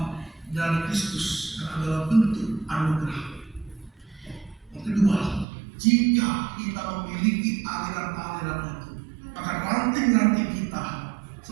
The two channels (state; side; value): drops out; left; at 5.5 s